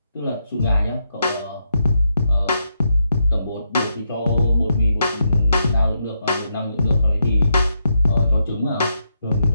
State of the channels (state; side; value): inverted; both; correlation -0.81